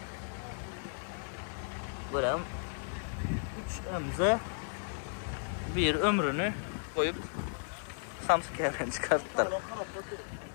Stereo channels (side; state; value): right; silent; digital silence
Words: Buram 3 MZ bir ömrünü koyup Samsung çıkarttılar.